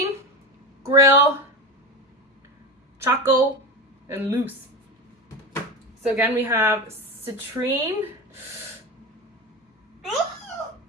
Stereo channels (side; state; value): both; normal; correlation 0.23